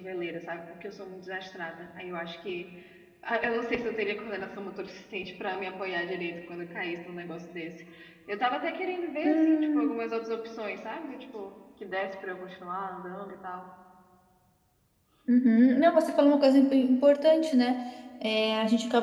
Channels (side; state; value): both; identical; correlation 1.00